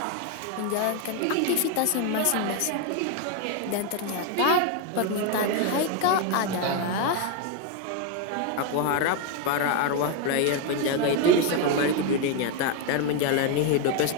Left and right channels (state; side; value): different; both; correlation 0.01